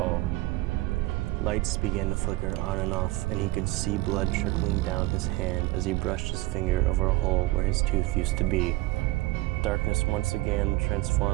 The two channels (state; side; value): quieter; left; 19.7 dB